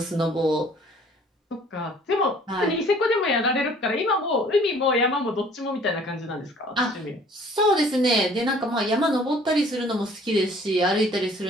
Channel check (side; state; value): both; normal; correlation 0.54